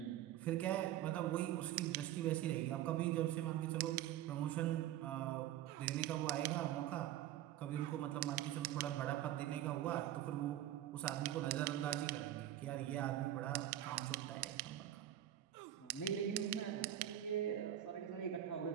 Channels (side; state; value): left; quieter; 12.3 dB